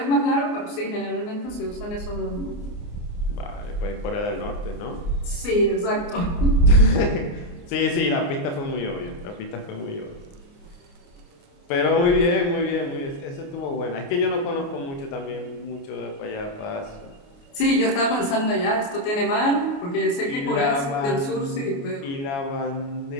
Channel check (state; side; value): late; right; 29 ms